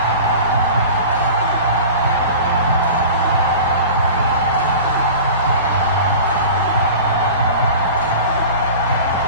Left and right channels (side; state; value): both; inverted; correlation -0.37